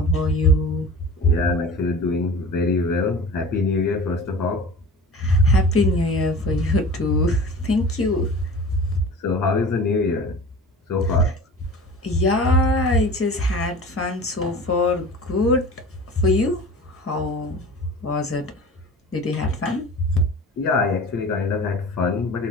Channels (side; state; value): both; normal; correlation 0.38